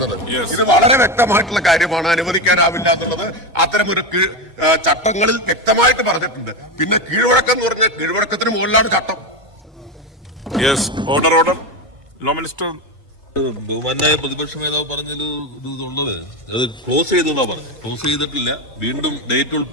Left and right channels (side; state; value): both; normal; correlation 0.15